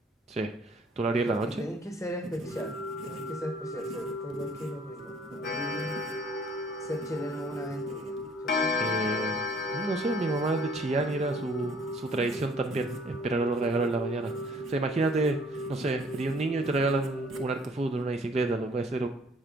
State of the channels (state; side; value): normal; both; correlation 0.58